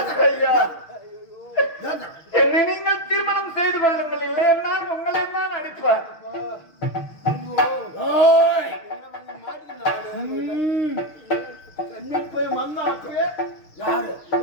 என்னை நீங்கள் திருமணம் செய்து கொள்ளுங்கள், இல்லை என்றால் உங்களை தான் அடிப்பார். போய் வந்தா அப்படியே யாரு?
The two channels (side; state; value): right; late; 6.4 ms